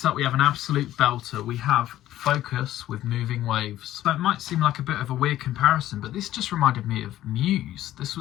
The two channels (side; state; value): right; quieter; 13.6 dB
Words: up we have an absolute belter. We have Focus with Moving Waves. So it might seem like a bit of a weird comparison, but this just reminded me of Muse. This